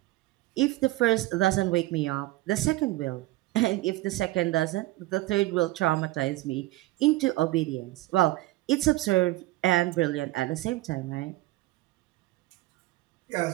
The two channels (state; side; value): quieter; left; 18.2 dB